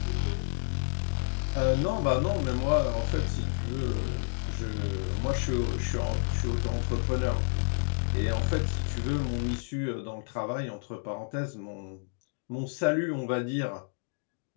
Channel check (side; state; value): right; silent; digital silence